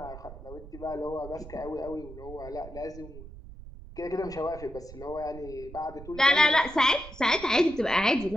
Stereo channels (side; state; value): right; noise; rumble, 15 dB below the sound